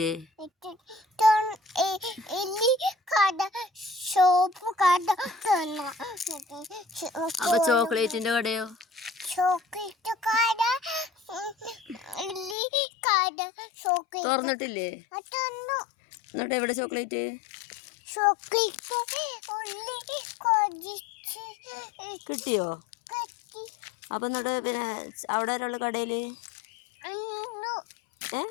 അപ്പൊ ചോക്ലേറ്റിന്റെ കടയോ? തുറന്നിട്ടില്ലേ? എന്നിട്ട് എവിടെ ചോക്ലേറ്റ്? കിട്ടിയോ? അപ്പൊ എന്നിട്ട് പിന്നെ അവിടെ ഒരാള് കടയില്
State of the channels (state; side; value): drops out; right; at 12.6 s